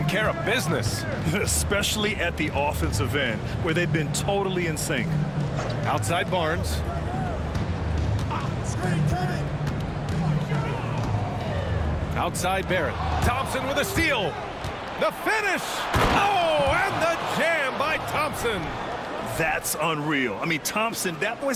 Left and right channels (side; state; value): both; identical; correlation 1.00